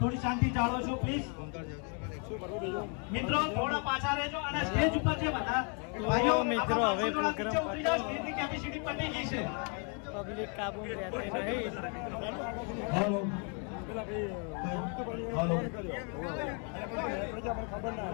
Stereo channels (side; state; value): right; quieter; 38.5 dB